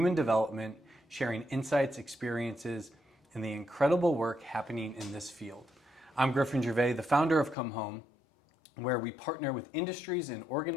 development, sharing insights, experiences, and the incredible work happening in this field. I'm Griffin Gervais, the founder of Come Home, where we partner with industries and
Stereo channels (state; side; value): drops out; right; at 7.6 s